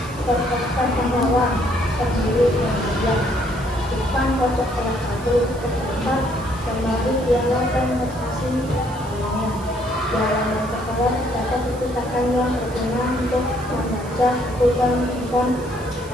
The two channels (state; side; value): noise; right; hiss, 21 dB below the sound